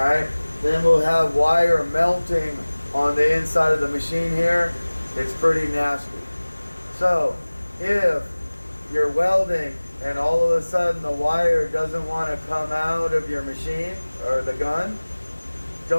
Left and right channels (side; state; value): both; inverted; correlation -1.00